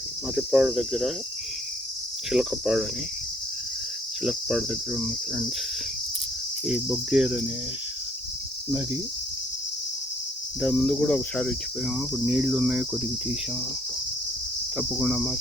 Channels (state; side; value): normal; both; correlation 0.64